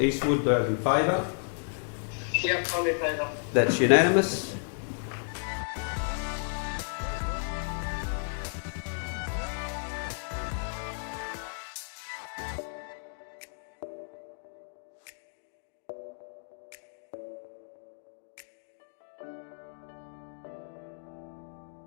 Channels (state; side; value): silent; right; digital silence